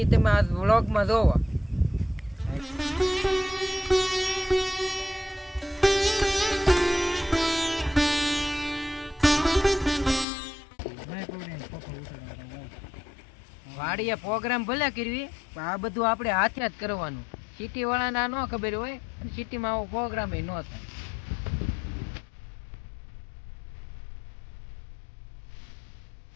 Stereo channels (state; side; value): drops out; right; at 10.2 s